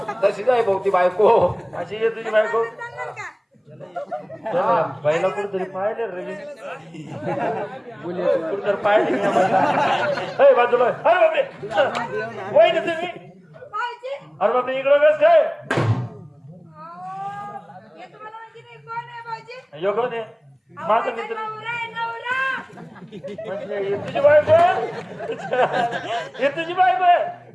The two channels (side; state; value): both; identical; correlation 1.00